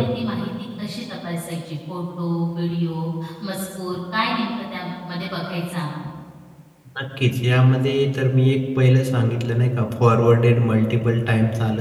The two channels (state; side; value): identical; both; correlation 1.00